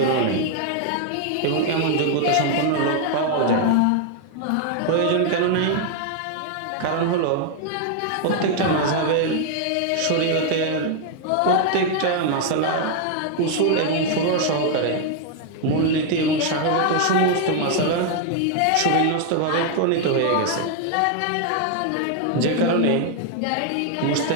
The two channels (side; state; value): both; different; correlation 0.00